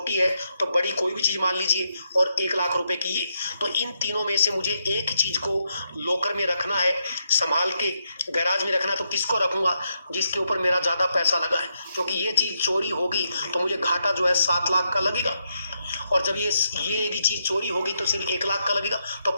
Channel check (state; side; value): inverted; both; correlation -0.80